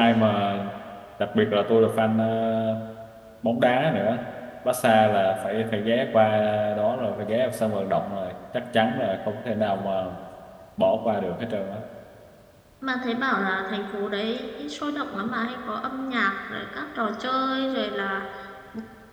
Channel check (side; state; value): both; identical; correlation 1.00